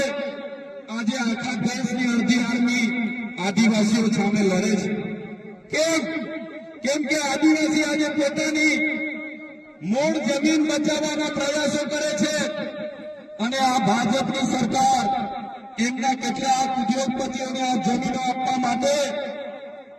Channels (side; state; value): both; identical; correlation 1.00